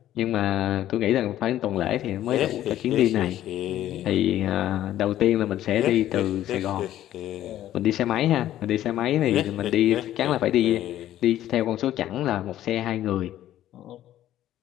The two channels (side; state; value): right; quieter; 12.8 dB